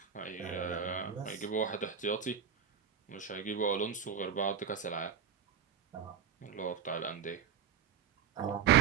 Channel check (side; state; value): left; quieter; 7.7 dB